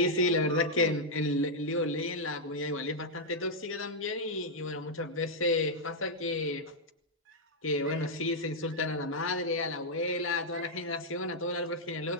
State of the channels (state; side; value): normal; both; correlation -0.04